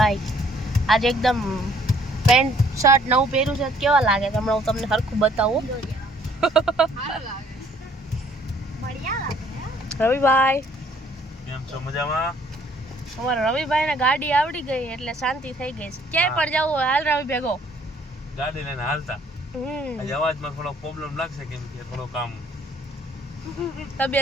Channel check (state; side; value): normal; both; correlation 0.61